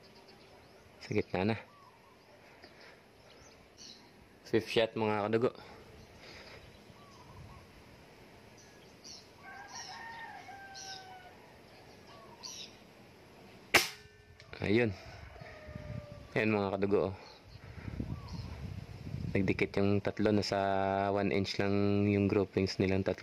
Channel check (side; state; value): both; identical; correlation 1.00